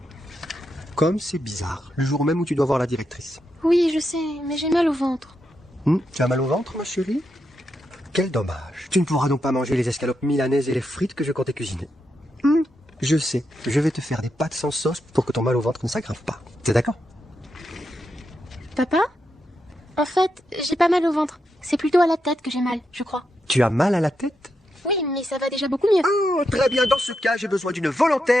Comme c'est bizarre, le jour même où tu dois voir la directrice. Oui, je sais, mais j'ai mal au ventre. Tu as mal au ventre, ma chérie? Quel dommage. Tu ne pourras donc pas manger les escalopes milanaises et les frites que je comptais cuisiner. Je sais, je vais te faire des pâtes sans sauce pour que ton mal au ventre ne s'aggrave pas. T'es d'accord? Papa? En fait, j'ai pas mal au ventre. C'est plutôt à la tête que j'ai mal, je crois. Tu as mal à la tête? Oui, mais ça va déjà beaucoup mieux. Oh, très bien. Dans ce cas, j'ai besoin d'une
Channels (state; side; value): normal; both; correlation 0.84